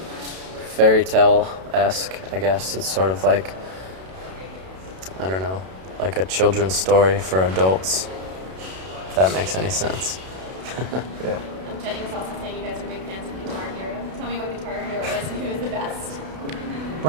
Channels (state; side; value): late; left; 32 ms